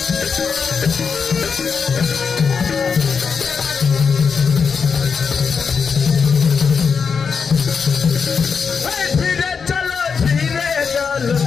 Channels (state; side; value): quieter; right; 5.8 dB